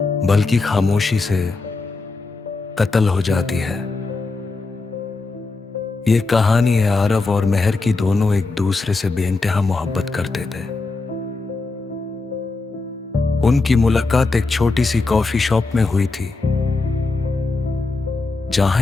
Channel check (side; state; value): right; quieter; 3.7 dB